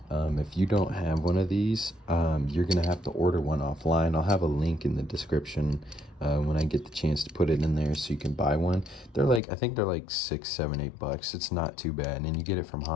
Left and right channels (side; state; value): right; drops out; at 9.4 s